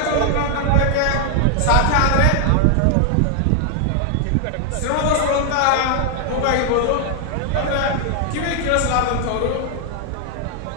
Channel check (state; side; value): different; both; correlation 0.00